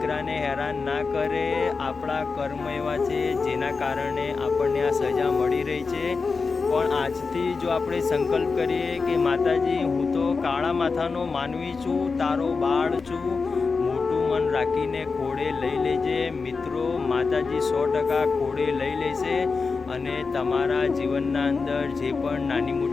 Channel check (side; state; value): right; quieter; 4.6 dB